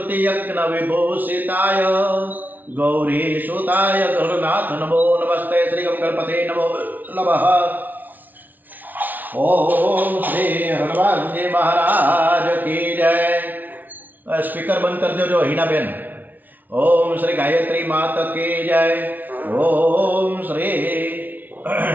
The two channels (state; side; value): late; left; 0.083 ms